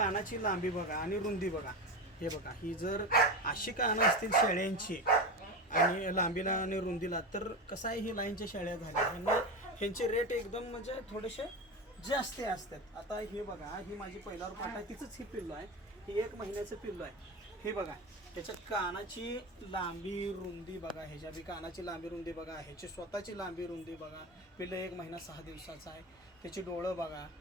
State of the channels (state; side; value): normal; both; correlation 0.22